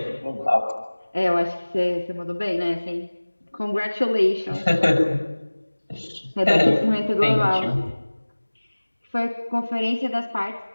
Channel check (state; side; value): inverted; both; correlation -1.00